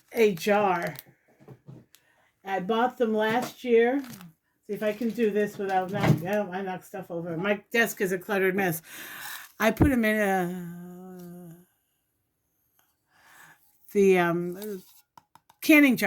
a jar. I bought them last year. See if I can do this without knocking. I knock stuff over. My desk is a cluttered mess. I put them in the canning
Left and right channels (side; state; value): both; identical; correlation 1.00